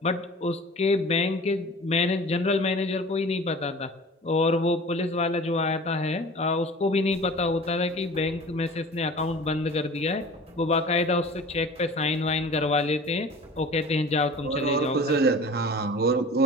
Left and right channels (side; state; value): both; normal; correlation 0.41